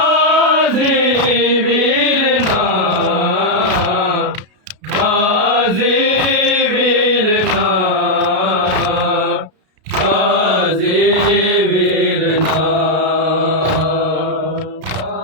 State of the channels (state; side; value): late; left; 33 ms